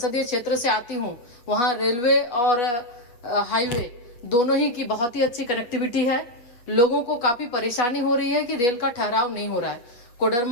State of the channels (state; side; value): late; right; 8.3 ms